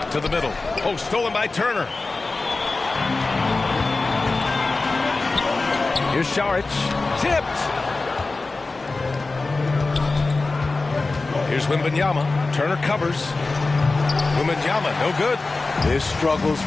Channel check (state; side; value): quieter; right; 3.5 dB